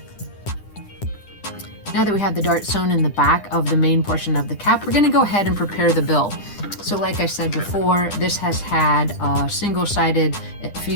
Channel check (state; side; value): late; right; 10 ms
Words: Now that we have the dart sewn in the back of the main portion of the cap, we're going to go ahead and prepare the bill. So like I said before, this has had single-sided